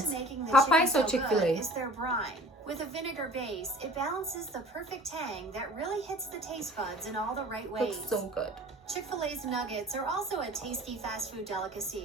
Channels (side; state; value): both; normal; correlation 0.46